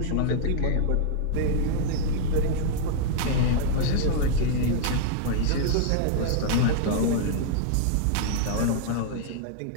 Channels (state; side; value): different; both; correlation -0.01